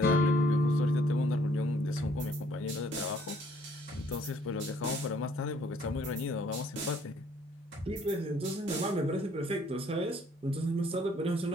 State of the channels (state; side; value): normal; both; correlation 0.62